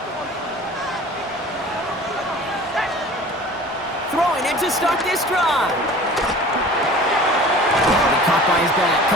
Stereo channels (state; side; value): normal; both; correlation 0.43